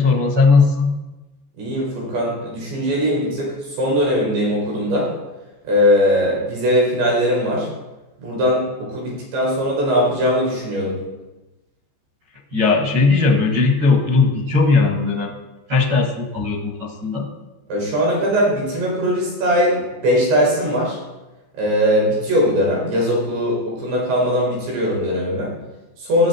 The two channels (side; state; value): left; late; 14 ms